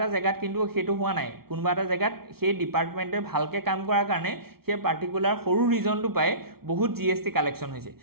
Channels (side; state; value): left; late; 0.94 ms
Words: জেগাত কিন্তু সেইটো হোৱা নাই কোনোবা এটা জেগাত সেই ডিপাৰ্টমেণ্টে ভালকৈ কাম কৰাৰ কাৰণে সেই পাৰ্টিকুলাৰ সৰু ৰিজনটো পাই বহুত GST কালেকশ্যন হৈছে